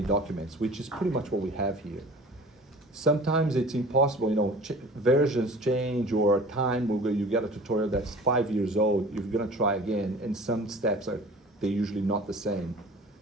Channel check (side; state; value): both; normal; correlation 0.43